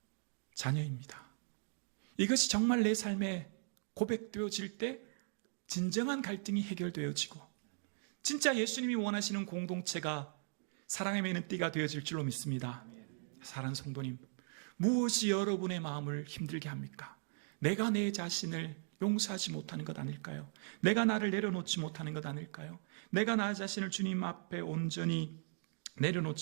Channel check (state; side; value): silent; left; digital silence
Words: 자녀입니다. 이것이 정말 내 삶에 고백되어질 때 진정한 갈등이 해결되어지고 진짜 예수님이 원하시는 공동체가 사랑의 매는 띠가 되어질 줄로 믿습니다. 사랑하는 성도님, 무엇이 여러분의 마음을 힘들게 합니까? 내가 내 자신을 용서하지 못하는 것 아닐까요? 내가 나를 내려놓지 못하는 것 아닐까요? 내가 나 자신을 주님 앞에 온전히